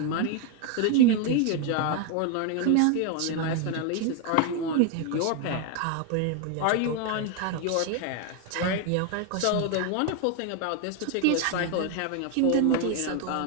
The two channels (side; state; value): both; different; correlation 0.01